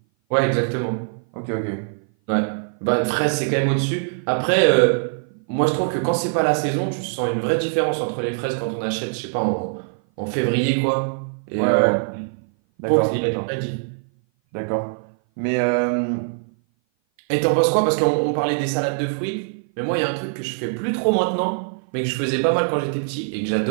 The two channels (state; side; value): silent; left; 57 dB below the other